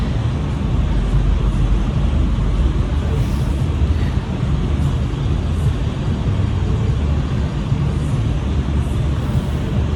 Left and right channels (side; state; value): both; identical; correlation 1.00